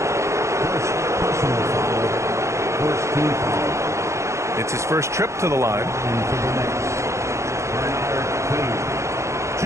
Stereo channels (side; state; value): left; late; 0.14 ms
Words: It's his first trip to the line.